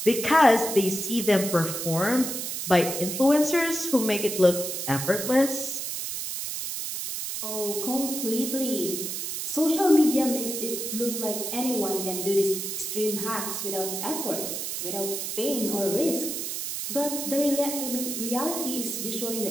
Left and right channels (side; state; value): right; noise; hiss, 4 dB below the sound